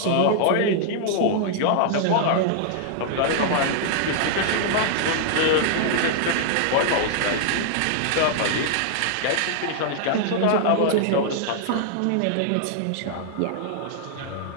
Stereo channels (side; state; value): both; different; correlation -0.01